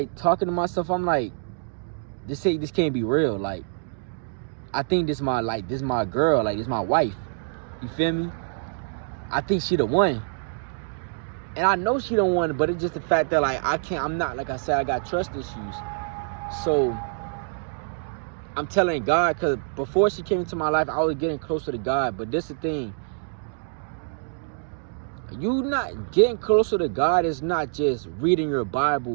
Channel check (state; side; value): silent; left; digital silence